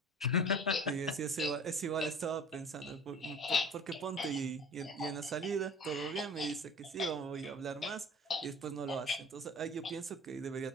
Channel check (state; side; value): normal; both; correlation 0.43